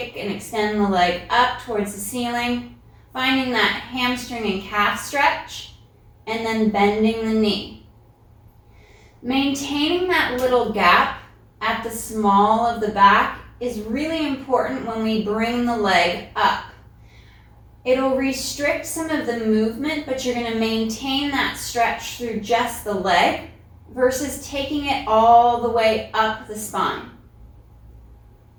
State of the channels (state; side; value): identical; both; correlation 1.00